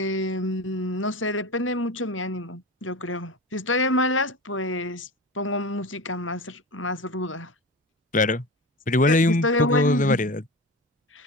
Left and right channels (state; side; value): normal; both; correlation 0.29